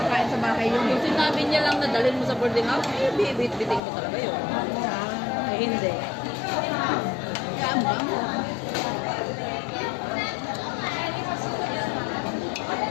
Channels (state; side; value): drops out; right; at 3.8 s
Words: sa bahay yun. Yung sinabi niya lang na dalhin mo sa boarding house, eh, bibit-biting mo talaga yun. Eh, hindi. Saan ba?